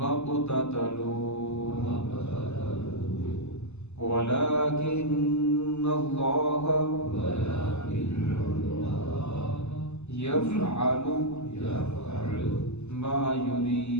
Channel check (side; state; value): right; late; 0.81 ms